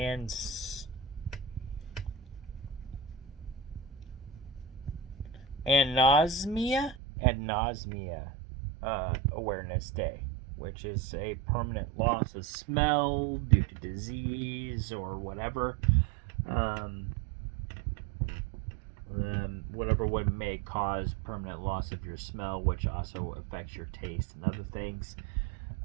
Anosmia Awareness Day, which is a permanent loss of smell due to disease or whatever. Whatever would may cause permanent loss of your smell, which also affects your taste and other things.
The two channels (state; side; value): drops out; left; at 7.0 s